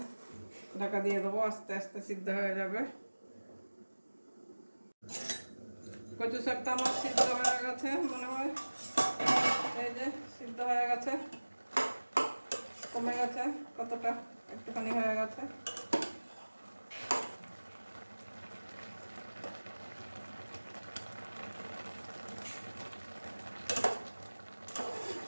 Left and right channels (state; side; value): inverted; both; correlation -1.00